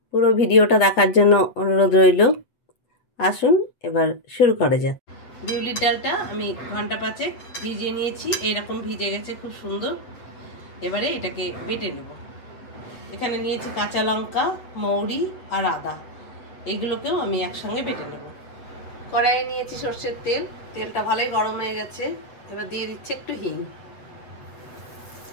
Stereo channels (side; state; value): right; late; 7.9 ms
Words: পুরো ভিডিওটা দেখার জন্য অনুরোধ রইল। আসুন এবার শুরু করা যাক। বিউলির ডালটা আমি ঘন্টা 5 ভিজিয়ে নিয়েছি। এইরকম ভিজে গেছে, খুব সুন্দর। এবারে এটাকে বেটে নেব। এখানে নিয়েছি কাঁচা লঙ্কা, মৌরি আর আদা। এগুলোকেও আমি একসঙ্গে বেটে নেব। কড়াইয়ে নিয়েছি সর্ষের তেল। তেলটা ভালোই গরম হয়ে গেছে। এবার দিয়ে দিচ্ছি একটু হিং।